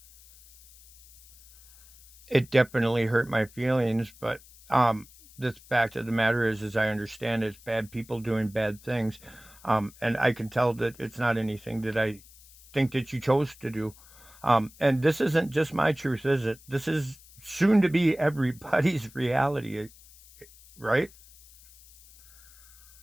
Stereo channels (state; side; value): noise; left; hiss, 24 dB below the sound